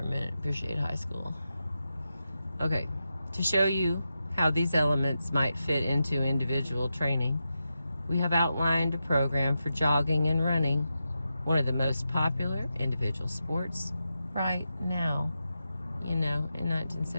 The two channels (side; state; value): both; inverted; correlation -0.88